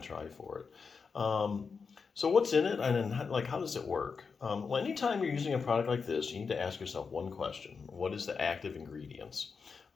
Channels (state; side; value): quieter; right; 5.3 dB